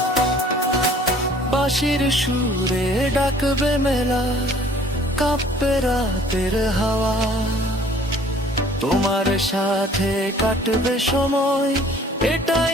বাঁশির সুরে ডাকবে মেলা, কাঁপবে রাতের হাওয়া, তোমার সাথে কাটবে সময়,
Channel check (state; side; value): normal; both; correlation 0.54